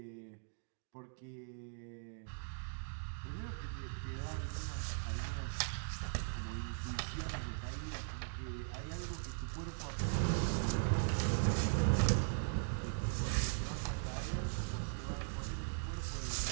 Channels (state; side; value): silent; left; digital silence